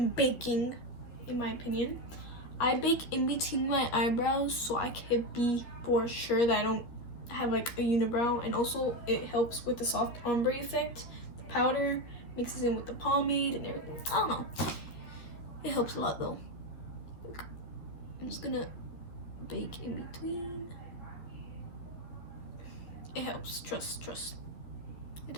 baking, in my opinion. I bake in between my eyebrows so I can be for sure that I don't have like a unibrow, and also it helps with the soft ombre effect. The powder mixes in with the pomade and everything. I don't know. It helps a lot though. I'm just gonna bake in between. It helps. Trust. It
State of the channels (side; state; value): right; late; 12 ms